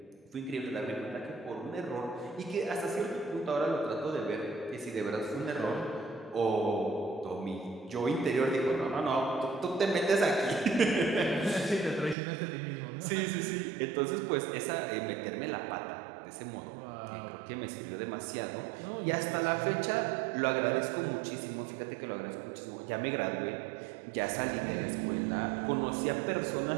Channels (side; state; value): left; drops out; at 12.2 s